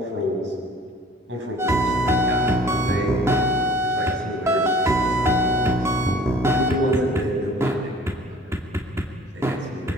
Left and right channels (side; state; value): both; normal; correlation 0.50